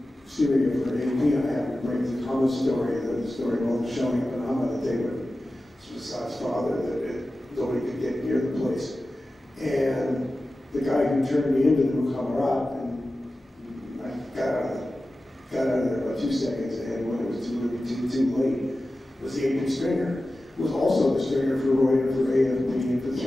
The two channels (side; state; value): both; normal; correlation 0.94